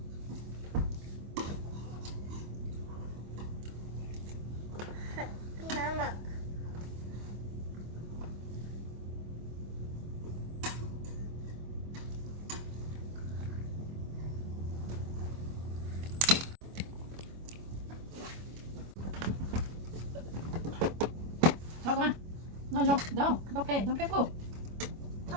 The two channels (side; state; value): left; late; 25 ms